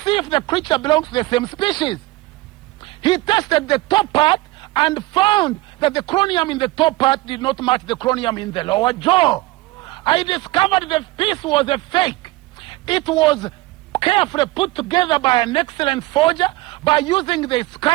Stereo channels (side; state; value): left; quieter; 19.7 dB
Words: if the creature belongs to the same species. He tested the top part and found that the chromium in the top part did not match the chromium in the lower jaw. I discovered the piece was a fake. It was carefully put together by an excellent forger by using the